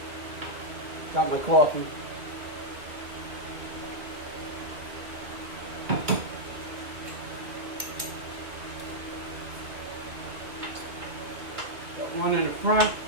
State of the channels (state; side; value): late; left; 2.1 ms